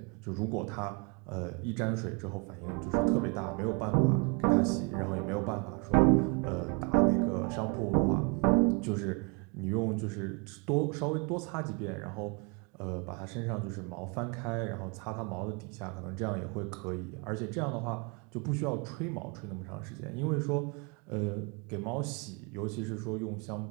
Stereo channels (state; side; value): quieter; left; 32.9 dB